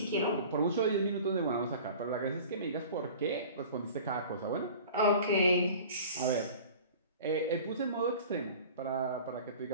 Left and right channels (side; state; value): both; inverted; correlation -0.41